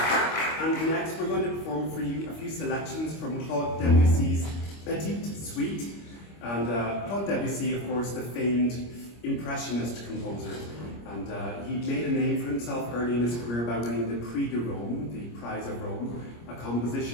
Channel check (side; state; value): right; late; 25 ms